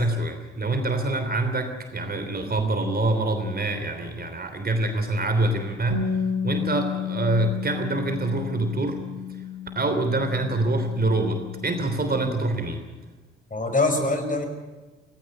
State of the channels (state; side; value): normal; both; correlation 0.49